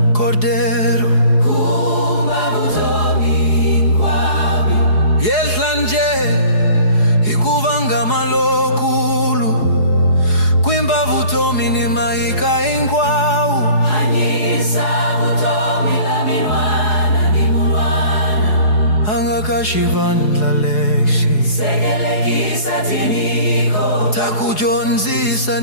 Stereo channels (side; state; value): right; late; 4.8 ms